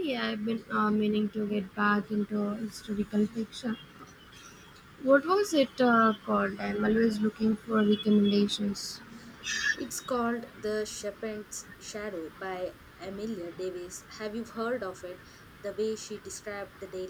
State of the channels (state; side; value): identical; both; correlation 1.00